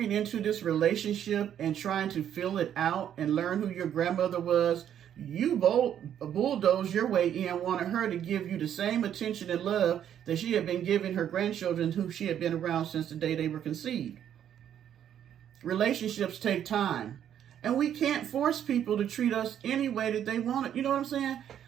into this relationship and trying to fill it out and learn who your grandmother was, you bulldozed your way in, wanted her to give you the same attention and love that she had been giving her grandchildren who she had been around since the day they were conceived. Relationships take time. And we can't force people to treat us any way that they want it. You know what I'm saying?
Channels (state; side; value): quieter; left; 9.8 dB